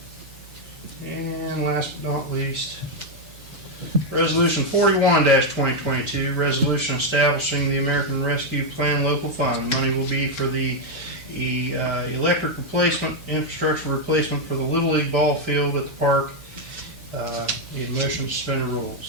And last but not least, resolution 41-2022, resolution establishing the American Rescue Plan local fund. Money will be for the electric replacement, infrastructure replacement for the Little League ball field at the park. Need a motion to suspend the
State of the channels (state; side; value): normal; both; correlation 0.02